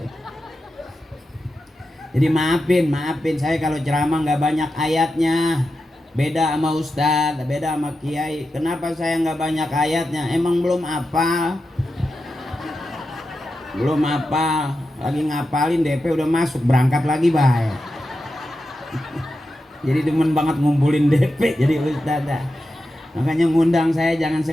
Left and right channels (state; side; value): normal; both; correlation 0.90